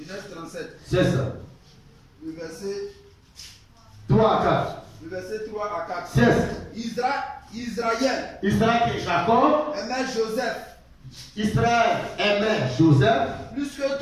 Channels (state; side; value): identical; both; correlation 1.00